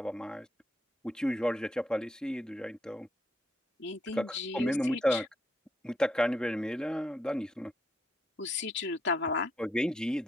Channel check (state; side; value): normal; both; correlation 0.76